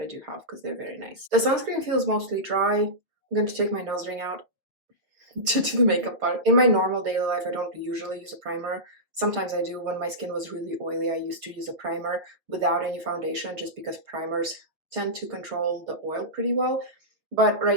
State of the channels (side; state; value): left; late; 6.5 ms